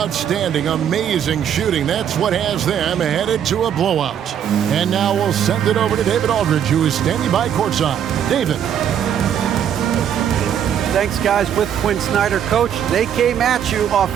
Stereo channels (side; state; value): left; quieter; 9.1 dB